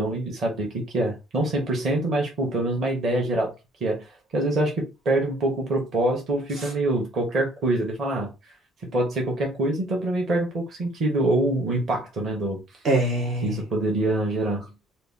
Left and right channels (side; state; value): both; normal; correlation 0.57